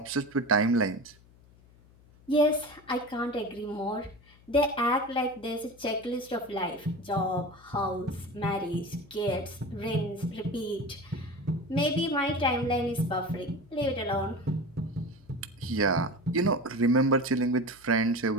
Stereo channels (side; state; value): left; noise; hum, 26 dB below the sound